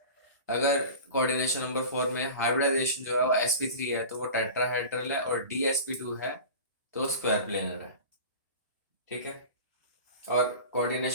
अगर कोऑर्डिनेशन नंबर 4 में हाइब्रिडाइजेशन जो है वो sp3 है तो वो टेट्राहेड्रल है, और dsp2 है तो स्क्वायर प्लेनर है। ठीक है। और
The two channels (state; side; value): inverted; both; correlation -0.35